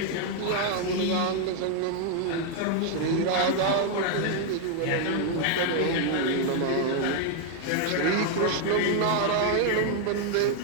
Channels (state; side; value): different; both; correlation 0.00